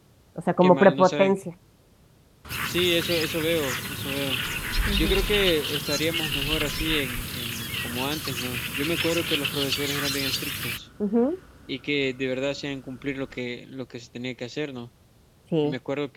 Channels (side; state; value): both; identical; correlation 1.00